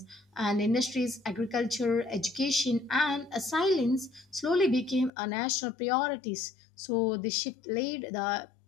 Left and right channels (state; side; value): drops out; right; at 5.1 s